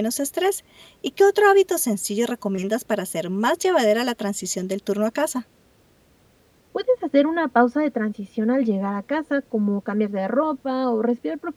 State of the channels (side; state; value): both; identical; correlation 1.00